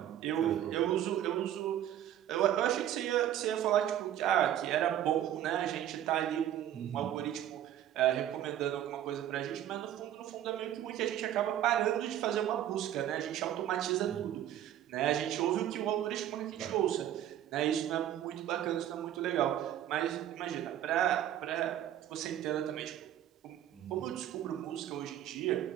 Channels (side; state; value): left; quieter; 11.4 dB